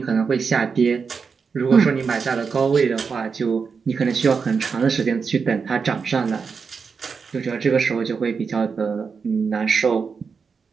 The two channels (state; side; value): quieter; left; 5.5 dB